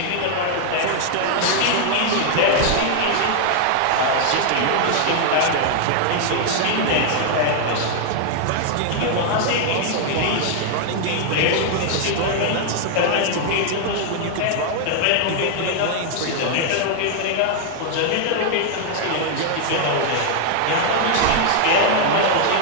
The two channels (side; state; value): both; different; correlation 0.00